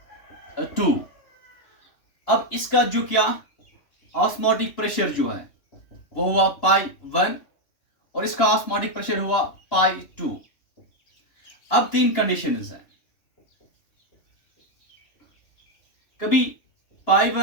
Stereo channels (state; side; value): late; right; 3.1 ms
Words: 2। अब इसका जो क्या ऑस्मोटिक प्रेशर जो है वो हुआ π1 और इसका ऑस्मोटिक प्रेशर हुआ π2। अब 3 कंडीशंस हैं, कभी पाई